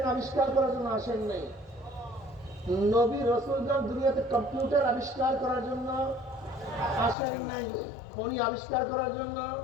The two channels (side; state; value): right; drops out; at 7.2 s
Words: আবিষ্কার করার জন্য আসেন নাই। নবী রসুলগণ দুনিয়াতে কম্পিউটার আবিষ্কার করার জন্য আসেন নাই। খনি আবিষ্কার করার জন্য